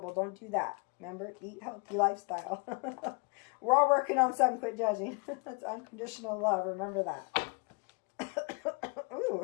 Don't do that. Remember, eat healthy lifestyle. We're all working on something. Quit judging. That's unconditional love. Remember that.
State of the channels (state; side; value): quieter; right; 31.9 dB